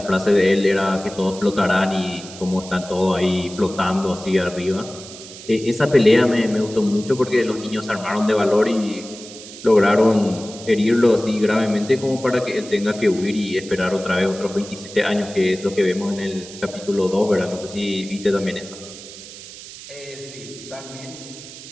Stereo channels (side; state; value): right; noise; hiss, 15 dB below the sound